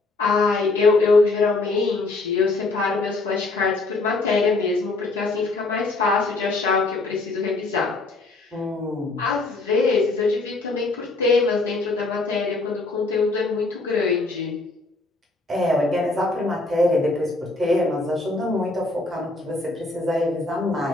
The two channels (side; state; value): right; quieter; 3.2 dB